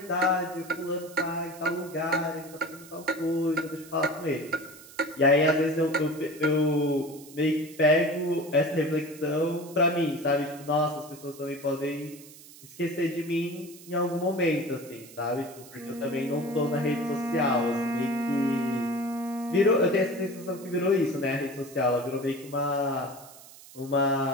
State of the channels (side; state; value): right; noise; hiss, 19 dB below the sound